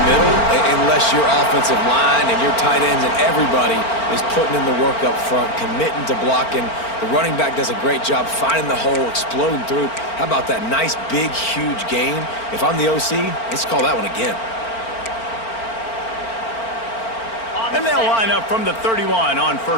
middle unless your offensive line and your tight ends and everybody is putting in the work up front, committing to blocking. The running back does a great job finding the hole, exploding through. How about that nice, big, huge gain? If I'm the OC, let's call that one again. And they'll line up from the 31 on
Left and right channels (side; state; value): right; late; 4.4 ms